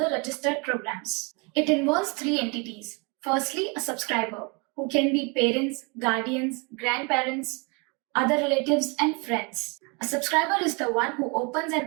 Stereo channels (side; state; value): left; quieter; 31.7 dB